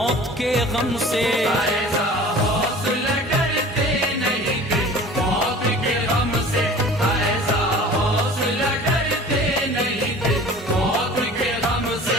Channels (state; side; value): normal; both; correlation 0.43